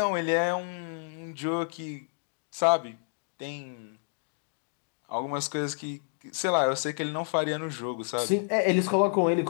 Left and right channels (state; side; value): silent; right; digital silence